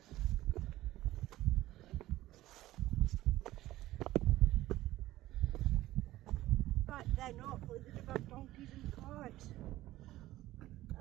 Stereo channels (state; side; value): quieter; left; 15.9 dB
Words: Back then, hopefully they'd have had donkeys and carts.